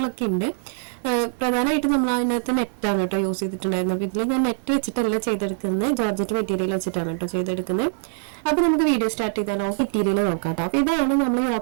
ഉണ്ട്. പ്രധാനമായിട്ട് നമ്മൾ അതിനകത്ത് നെറ്റാണ് കേട്ടോ യൂസ് ചെയ്തിട്ടുണ്ടായിരുന്നു. അപ്പോൾ ഇതിൽ ഞാൻ നെറ്റ് വെച്ചിട്ടല്ല ചെയ്തെടുക്കുന്നത്, ജോർജറ്റ് മെറ്റീരിയൽ വെച്ചിട്ടാണ് കേട്ടോ ചെയ്തെടുക്കുന്നത്. അപ്പോൾ നമുക്ക് വീഡിയോ സ്റ്റാർട്ട് ചെയ്താലോ മെറ്റീരിയൽ നോക്കാം കേട്ടോ. അപ്പോൾ ഇതാണ് നമ്മൾ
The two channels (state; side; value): silent; left; 63 dB below the other